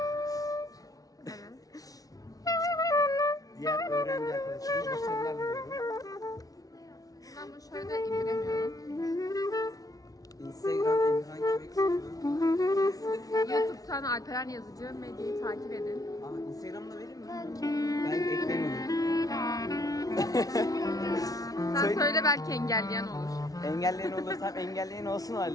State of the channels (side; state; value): right; late; 0.18 ms